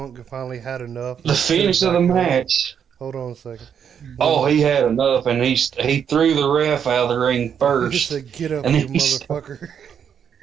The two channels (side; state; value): left; quieter; 7.9 dB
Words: finally had enough, the finish of the match. Hold on a second. Oh, he had enough, and he threw the ref out of the ring first. He said, "Get up, you motherfucker!"